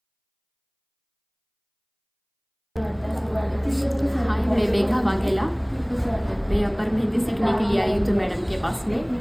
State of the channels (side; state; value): both; identical; correlation 1.00